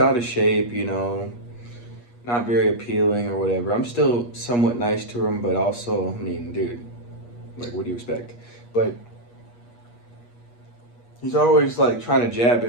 of shape, you know, not very appealing or whatever. I'm still somewhat nice to him, but also, I mean, dude, like, what do you expect? But he's always like trying to jab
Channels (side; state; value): right; late; 8.4 ms